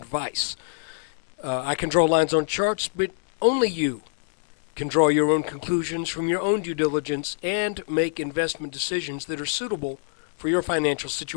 I can draw lines on charts, but only you can draw your own conclusions from your own due diligence and make investment decisions that are suitable for your financial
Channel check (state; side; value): silent; right; digital silence